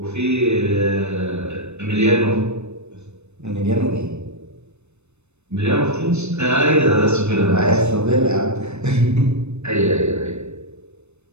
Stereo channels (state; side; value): late; left; 0.81 ms